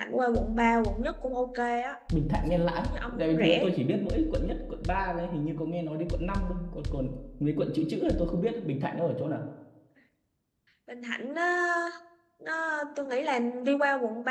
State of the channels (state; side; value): identical; both; correlation 1.00